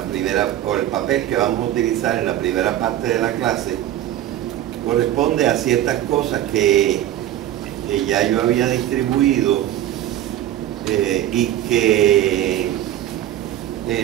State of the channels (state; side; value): quieter; left; 12.7 dB